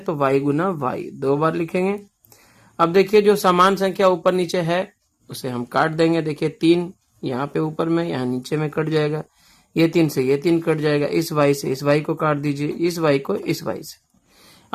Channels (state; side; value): identical; both; correlation 1.00